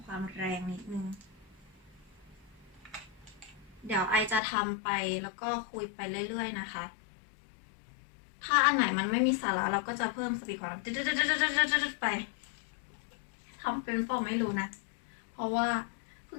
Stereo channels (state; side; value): drops out; right; at 4.4 s